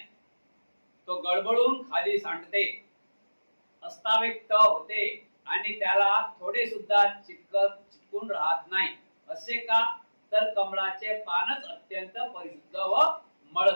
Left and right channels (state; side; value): inverted; both; correlation -1.00